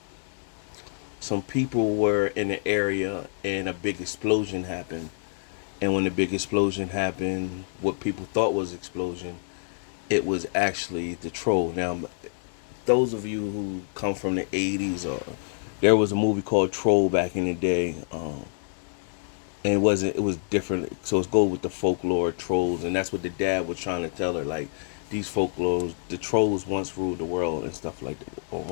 some people were in the area and a big explosion happened. And when the big explosion happened, what people thought was explosion, it was actually the troll. Now, those of you who come from the 80s, or there was a movie called Troll back in the day. And it was different. So it's go with the folklore trolls, and that's what the dad was trying to tell her. Like, these folklores, the trolls once ruled the world and stuff like that, or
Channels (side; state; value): right; silent; digital silence